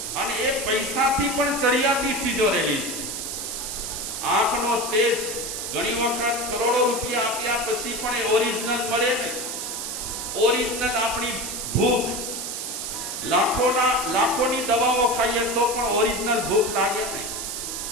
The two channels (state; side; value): noise; right; hiss, 5 dB below the sound